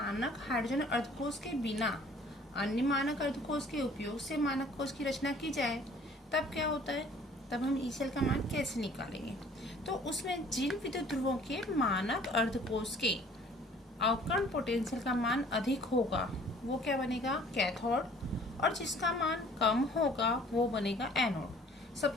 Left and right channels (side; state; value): both; normal; correlation 0.54